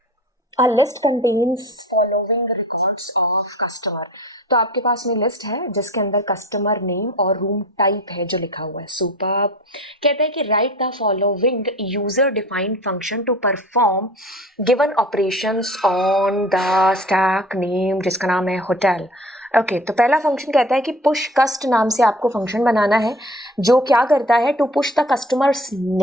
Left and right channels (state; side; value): normal; both; correlation 0.42